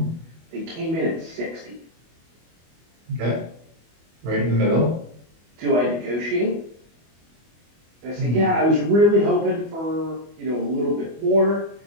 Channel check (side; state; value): left; late; 25 ms